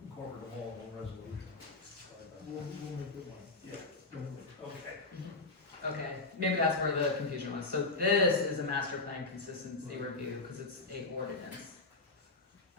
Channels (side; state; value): right; quieter; 3.5 dB